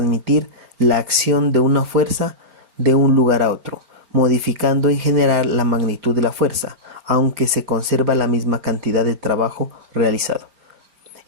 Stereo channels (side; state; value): left; late; 5.0 ms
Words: la acción de una fuerza de un lugar a otro, modificando en general la magnitud de la fuerza, aunque se conserva la misma cantidad de trabajo realizado.